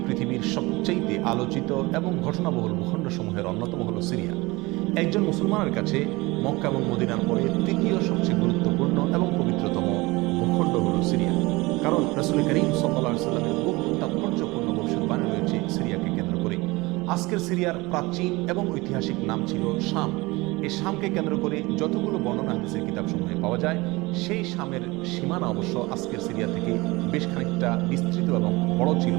পৃথিবীর সবচেয়ে আলোচিত এবং ঘটনাবহুল ভূখণ্ডসমূহের অন্যতম হলো সিরিয়া। একজন মুসলমানের কাছে মক্কা এবং মদিনার পরে তৃতীয় সবচেয়ে গুরুত্বপূর্ণ এবং পবিত্রতম ভূখণ্ড হলো সিরিয়া। কারণ রাসূল করিম সাল্লাল্লাহু আলাইহি ওয়াসাল্লামের বহু তাৎপর্যপূর্ণ ভবিষ্যদ্বাণী রয়েছে সিরিয়াকে কেন্দ্র করে। আজকের সিরিয়ার প্রাচীন এবং ঐতিহাসিক নাম ছিল শাম। এই শামকে কেন্দ্র করে যতগুলো বর্ণনা হাদিসের কিতাবসমূহে পাওয়া যায়, সেই শামের সীমানা অবশ্য আজকের সিরিয়া থেকে বেশ খানিকটা বিস্তৃত এবং বড় ছিল।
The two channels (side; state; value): left; quieter; 22.6 dB